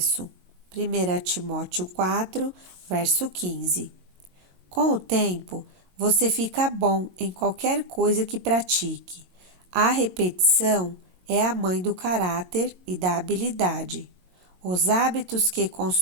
1 Timóteo 4, verso 15. Com o tempo, você fica bom em qualquer coisa que pratique. A repetição é a mãe do caráter e da habilidade. Os hábitos que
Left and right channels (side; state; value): left; late; 22 ms